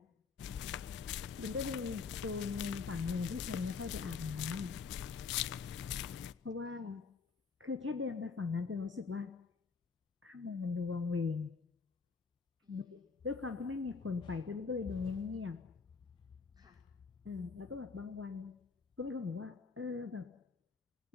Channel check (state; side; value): quieter; right; 5.1 dB